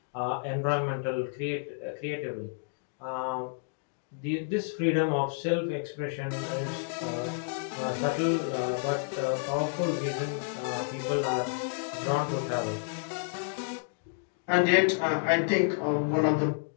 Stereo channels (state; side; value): silent; right; digital silence